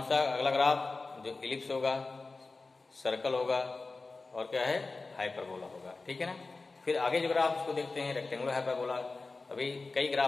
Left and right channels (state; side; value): quieter; right; 3.7 dB